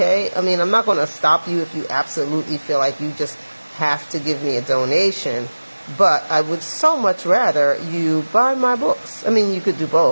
I mean, I'm not going to stop you if you absolutely feel like you just have to give me a donation. But I would so much rather you buy my books. I mean, you could do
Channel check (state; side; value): inverted; both; correlation -1.00